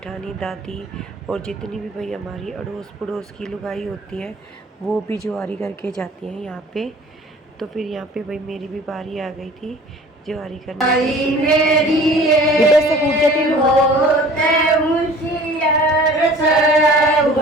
दादी और जितनी भी भाई हमारी अड़ोस पड़ोस की लुगाई होती है वो भी जुआरी करके जाती हैं यहाँ पे। तो फिर यहाँ पे भाई मेरी भी बारी आ गई थी जुआरी करने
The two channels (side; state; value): both; normal; correlation 0.47